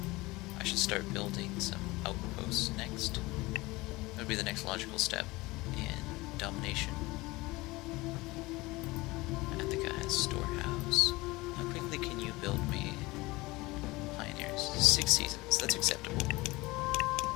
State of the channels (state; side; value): quieter; right; 21.5 dB